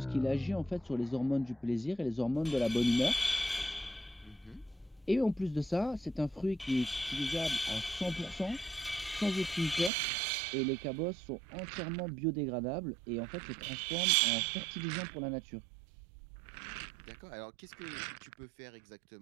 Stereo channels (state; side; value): drops out; left; at 9.9 s